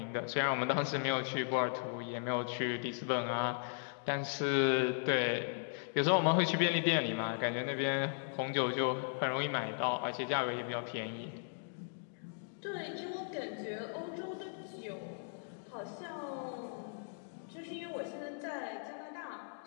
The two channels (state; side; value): silent; right; digital silence